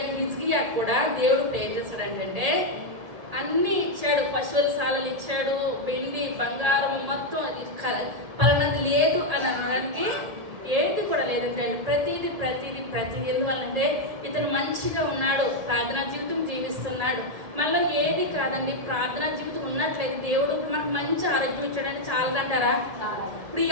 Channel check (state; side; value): late; left; 1.8 ms